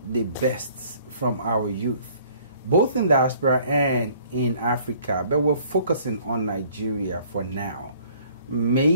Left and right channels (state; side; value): inverted; both; correlation -0.57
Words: the best from our youth, both in diaspora and in Africa. But we're focusing on Nigeria for now.